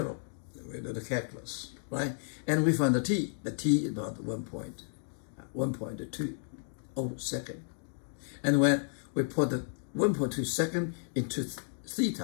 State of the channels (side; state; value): right; silent; digital silence